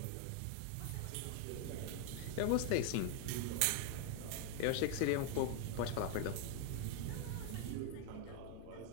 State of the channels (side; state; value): both; different; correlation 0.00